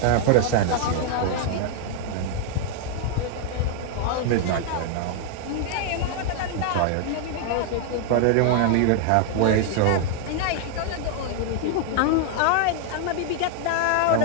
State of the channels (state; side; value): different; both; correlation 0.00